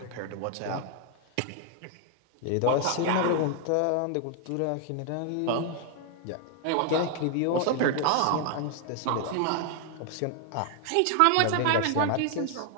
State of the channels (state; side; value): different; both; correlation 0.00